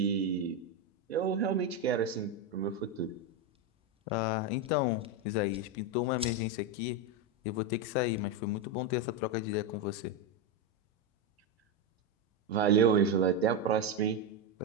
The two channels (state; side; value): normal; both; correlation 0.09